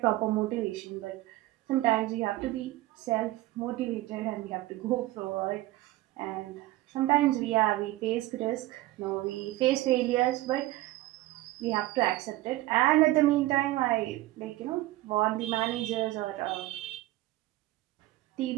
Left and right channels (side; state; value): left; quieter; 17.5 dB